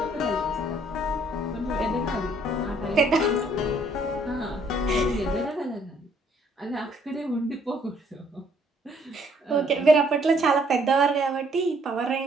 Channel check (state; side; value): normal; both; correlation 0.65